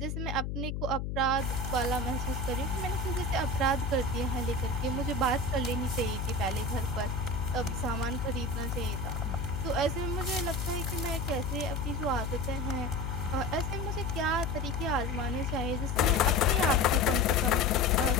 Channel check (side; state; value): left; noise; hum, 3 dB below the sound